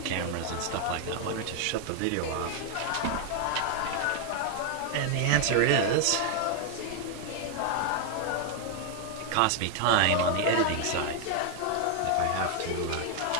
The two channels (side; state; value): both; different; correlation 0.01